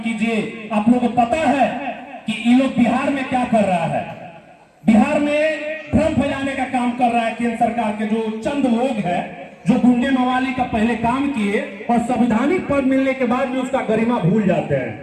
कीजिए। आप लोगों को पता है कि ये लोग बिहार में क्या कर रहा है, बिहार में भ्रम फैलाने का काम कर रहा है केंद्र सरकार के जो चंद लोग हैं, जो गुंडे मवाली का पहले काम किए और संवैधानिक पद मिलने के बाद भी उसका गरिमा भूल जाते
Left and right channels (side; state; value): both; identical; correlation 1.00